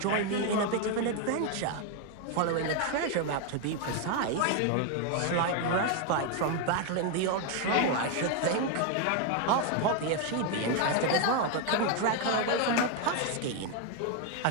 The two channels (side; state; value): both; different; correlation 0.01